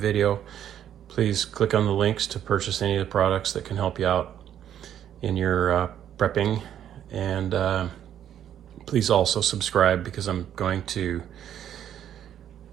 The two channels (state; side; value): quieter; left; 10.2 dB